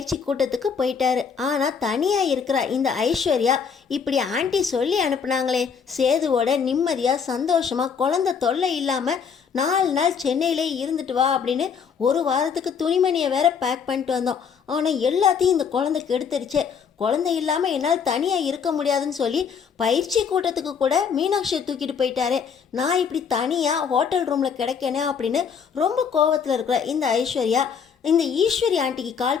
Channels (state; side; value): quieter; right; 6.6 dB